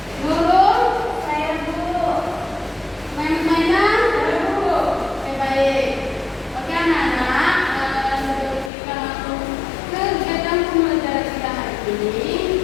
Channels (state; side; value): drops out; right; at 8.7 s